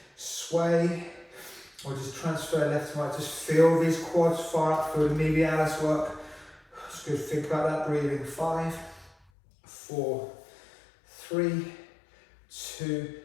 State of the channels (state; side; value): drops out; right; at 9.2 s